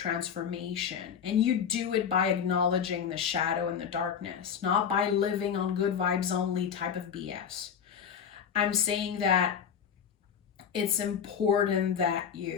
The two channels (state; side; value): quieter; right; 7.6 dB